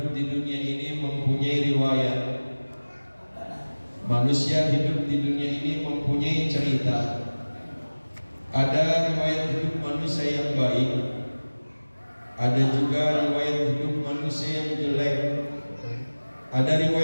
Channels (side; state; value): both; inverted; correlation -1.00